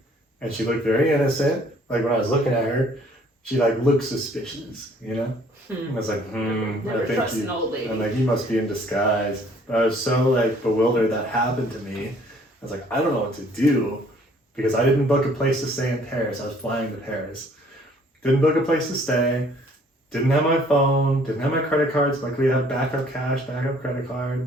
and she looked very innocent. Like when I was looking at her, she like looked suspicious, you know. And I was like, Never I think trust an old lady. I'm like, you must be in disguise. But I was so like bewildered that happened to me. I was like, I don't know what to do because I didn't book a place to stay in Paris. I was flying to Paris. Didn't book a place to stay. Didn't have my phone. Didn't have my credit cards. Luckily, I had backup cash, backup credit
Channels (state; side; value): normal; both; correlation 0.59